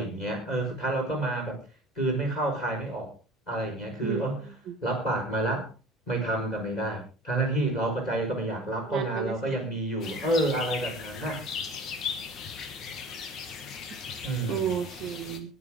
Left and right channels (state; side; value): normal; both; correlation 0.42